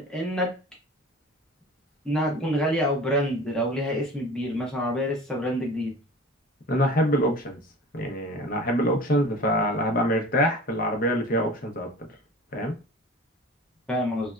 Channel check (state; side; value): normal; both; correlation 0.40